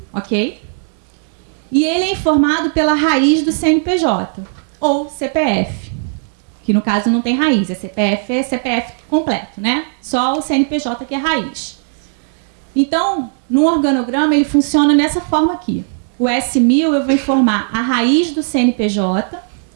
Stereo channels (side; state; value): left; silent; digital silence